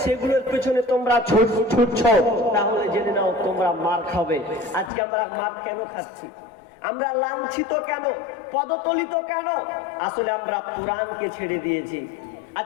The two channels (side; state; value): right; drops out; at 4.9 s